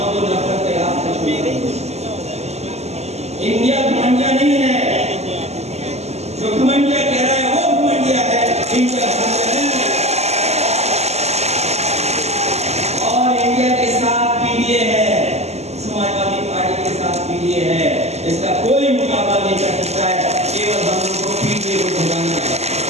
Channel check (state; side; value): late; left; 0.31 ms